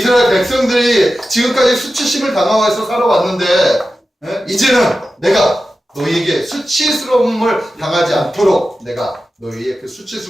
백성들이 지금까지 수치심을 당하면서 살아왔는데 이제는 내가 너희에게 수치스러움을 당하지 않도록 내가 너희의 그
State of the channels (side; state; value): both; normal; correlation 0.93